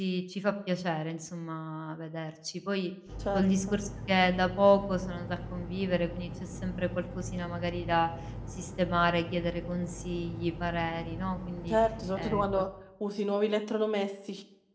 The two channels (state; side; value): identical; both; correlation 1.00